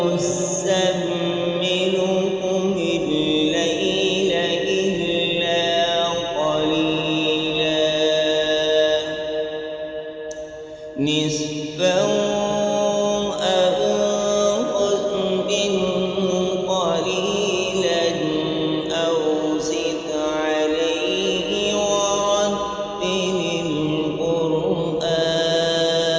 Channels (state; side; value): identical; both; correlation 1.00